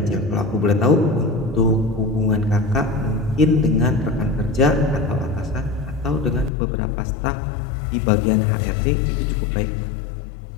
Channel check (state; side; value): drops out; right; at 6.5 s